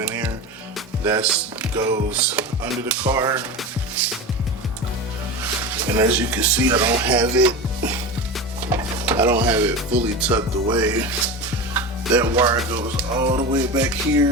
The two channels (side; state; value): both; normal; correlation 0.26